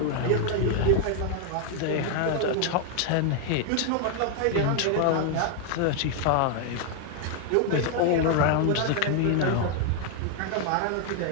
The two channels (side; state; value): both; different; correlation 0.00